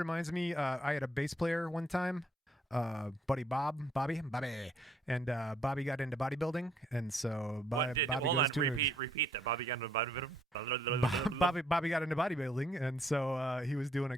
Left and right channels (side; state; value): both; normal; correlation 0.67